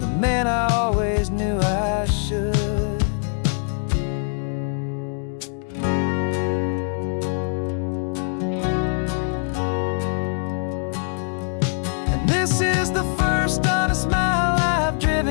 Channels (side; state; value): right; silent; 63 dB below the other